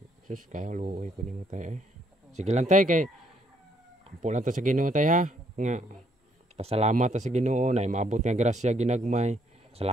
Sus kaya luoy ko nimo tay eh. Sige lang tay kay ampo lang ta sa Ginoo tay ha. Nga pasalamat ta sa Ginoo na maabot nga grasya ginagmay.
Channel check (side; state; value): both; normal; correlation 0.69